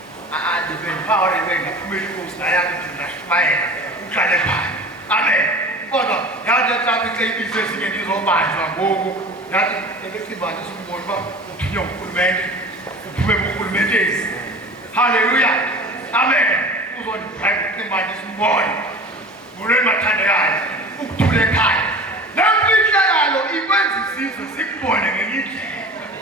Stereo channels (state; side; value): normal; both; correlation 0.39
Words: ndibendiphawulebenga phumela inkosi nayami ndinashumayela uhlale phaya amen kodwa yathi etraffic seyibize ezinye ndizobanjwa ngoku yathi ekecimbanisa umboni uba uthunywa ngurhulumente uphume kurhulumenteni haleluya amen uzondibheka ucimbanisa umboni ngolweni mathandekayo ukuthula ekhaya lemfihlakalo ikwenza isizwe sikubone ngenye indlela